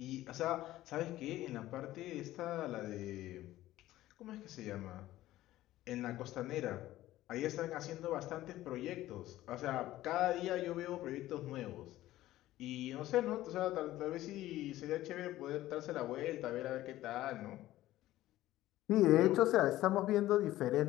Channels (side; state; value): right; quieter; 15.3 dB